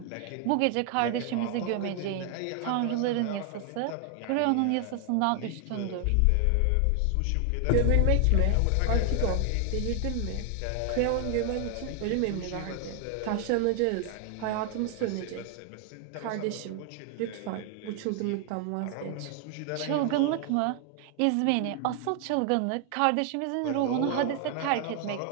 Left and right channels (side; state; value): both; different; correlation 0.00